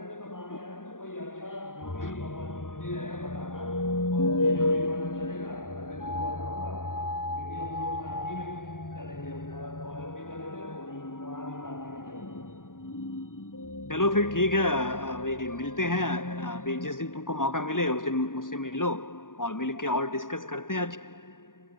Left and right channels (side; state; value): right; late; 0.89 ms